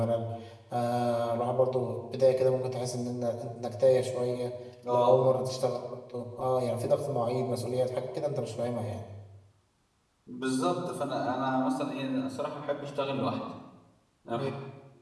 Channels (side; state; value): both; identical; correlation 1.00